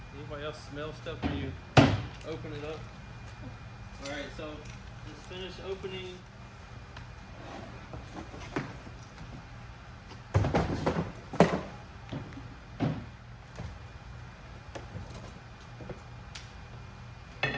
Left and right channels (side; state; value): both; identical; correlation 1.00